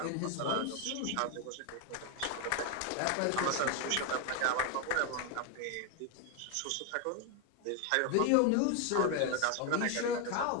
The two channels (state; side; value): different; both; correlation 0.01